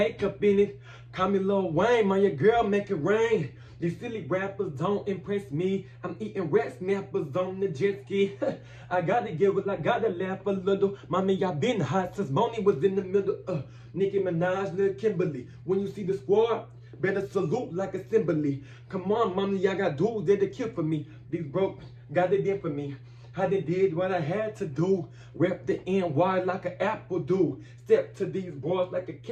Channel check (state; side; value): identical; both; correlation 1.00